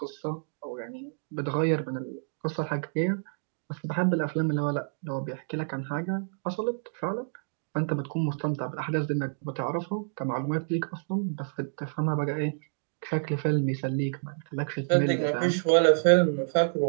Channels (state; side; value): silent; left; digital silence